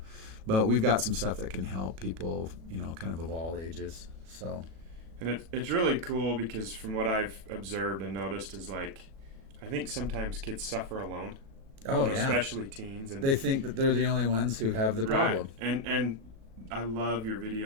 But we've got some stuff that can help people, kind of all ages. So, and it's really cool because from what I've observed and noticed is like, I think sometimes kids suffer alone. Especially teens, and they think that they're the only ones who have the problem. Right. And I love your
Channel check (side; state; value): left; late; 36 ms